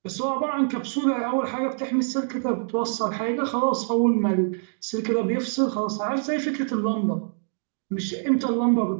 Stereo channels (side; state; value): left; silent; 60 dB below the other